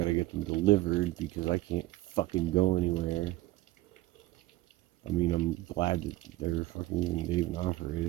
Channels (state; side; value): quieter; left; 16.9 dB